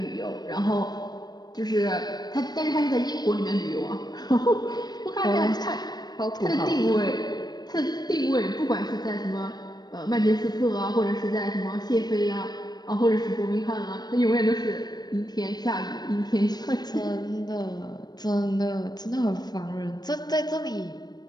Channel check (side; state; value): right; late; 0.19 ms